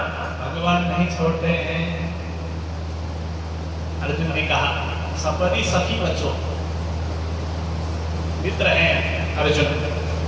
भगवान नहीं छोड़ते हैं। अर्जुन ने कहा सपदि सखी बचो, मित्र हैं अर्जुन,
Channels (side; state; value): both; identical; correlation 1.00